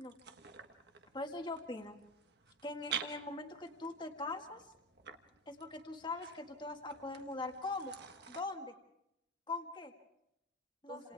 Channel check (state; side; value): normal; both; correlation 0.22